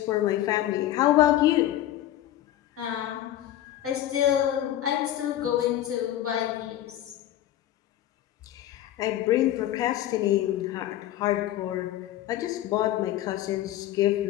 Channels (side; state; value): right; quieter; 13.1 dB